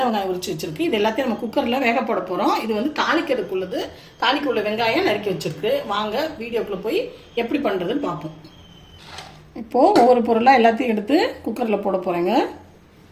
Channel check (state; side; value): identical; both; correlation 1.00